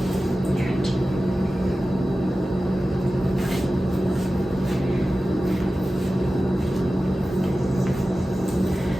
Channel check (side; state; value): both; normal; correlation 0.95